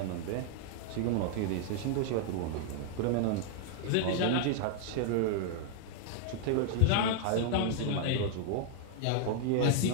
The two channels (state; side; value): different; both; correlation -0.01